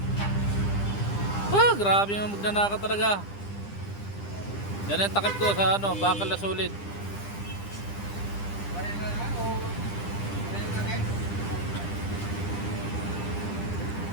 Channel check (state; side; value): late; right; 10 ms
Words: Grabe yung magnanakaw talaga. Yan yung takip ko sa bakal na solid.